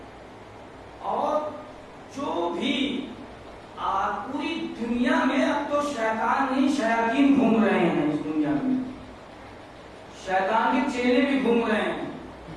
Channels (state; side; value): identical; both; correlation 1.00